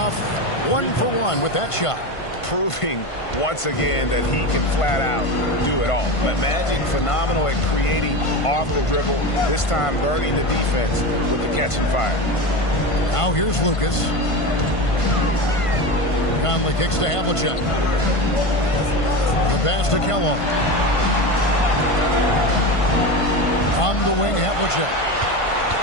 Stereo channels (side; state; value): right; late; 1.5 ms